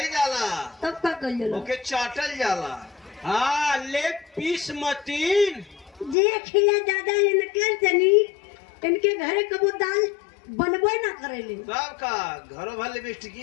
जाला तब का कल जाला ओके चाटल जाला। हाँ लेग पीस मतीन देख लिया दादा इनके तनी इनके घरे कबो दाल बनबे ना करेले। तब का घरों भर लिपस्टिक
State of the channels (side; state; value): right; drops out; at 6.2 s